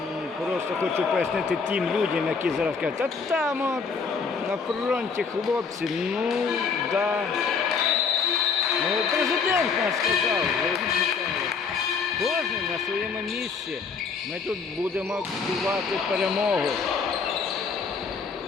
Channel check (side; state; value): right; quieter; 5.4 dB